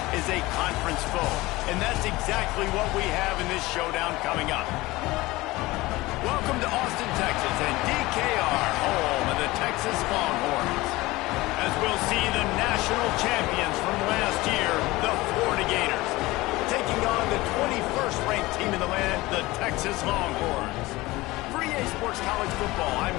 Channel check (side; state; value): right; quieter; 20.0 dB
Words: is a conference foe. And that's exactly what we have in this showdown coming up. Welcome to Austin, Texas, and DKR, home of the Texas Longhorns. As we'll see the national champions from last year, the Florida Gators, taking on the 21st ranked team in the land, the Texas Longhorns. For EA Sports College Football,